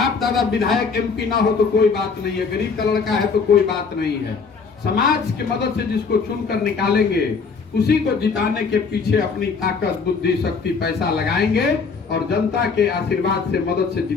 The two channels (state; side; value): quieter; right; 5.1 dB